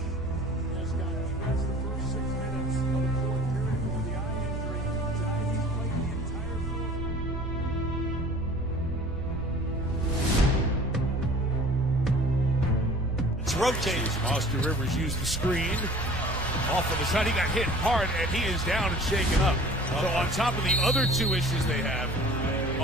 has got the first 6 minutes of the 4th period with the eye injury. Tonight he's played the entire rotates. Austin Rivers used the screen. Off of the side, he got hit hard, and he is down and shaken up. So on top of the other 2 issues they have,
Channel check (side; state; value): both; normal; correlation 0.47